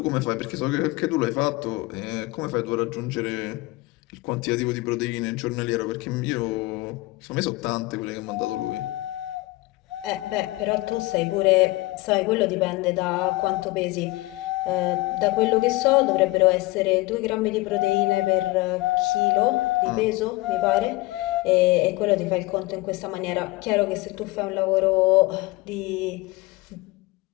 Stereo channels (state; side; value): quieter; right; 20.6 dB